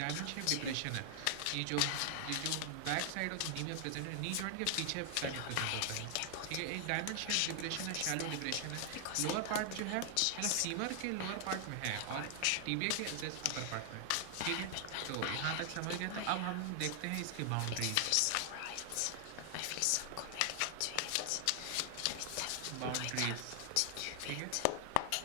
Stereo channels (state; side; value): different; both; correlation 0.00